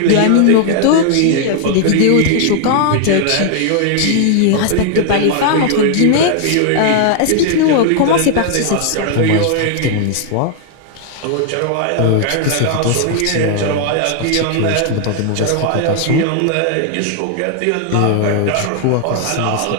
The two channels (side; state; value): both; different; correlation 0.00